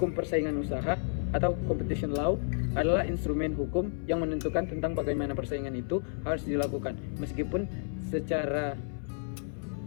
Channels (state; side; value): silent; right; 57 dB below the other